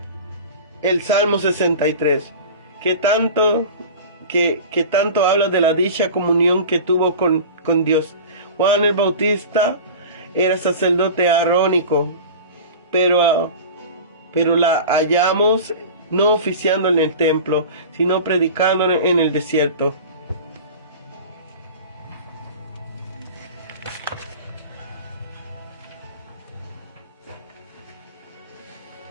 el Salmo 63, que tanto habla de la dicha comunión que tuvo con Dios. Juan el Bautista era sacerdote arónico, pero la hallamos no oficiando en el templo, sino predicando en el desierto.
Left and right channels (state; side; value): inverted; both; correlation -0.34